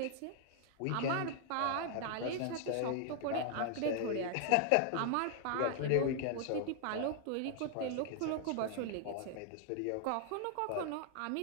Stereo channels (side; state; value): both; different; correlation 0.00